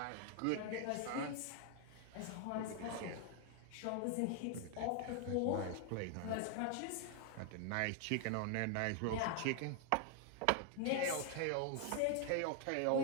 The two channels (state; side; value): different; both; correlation 0.00